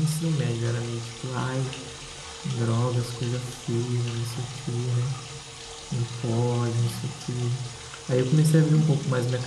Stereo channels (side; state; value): both; identical; correlation 1.00